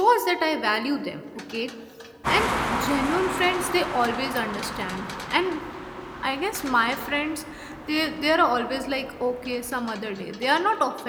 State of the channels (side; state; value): both; identical; correlation 1.00